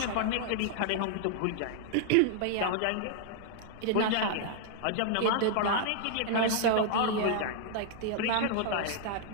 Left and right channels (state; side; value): different; both; correlation -0.01